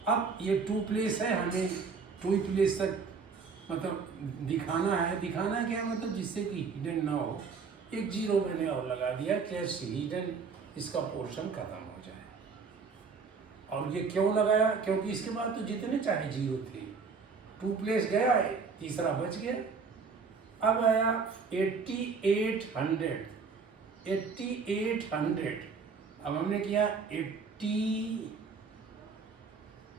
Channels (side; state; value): left; quieter; 5.2 dB